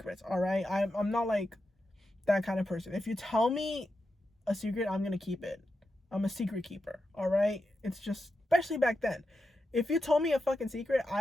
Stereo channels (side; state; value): both; normal; correlation 0.88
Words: all right? I'm not like that kind of person. If you tell me a secret, I'm gonna keep it. I'm a secret keeper, all right? It's just, especially back then. If you told me a fucking secret,